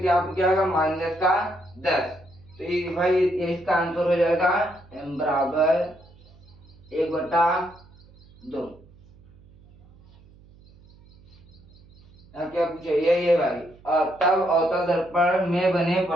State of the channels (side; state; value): right; noise; hum, 26 dB below the sound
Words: पे क्या होगा? -10। तो ये भाई ये इसका आंसर हो जाएगा m बराबर 1/2। क्या पूछे? यही है भाई। तब अवतल दर्पण में बने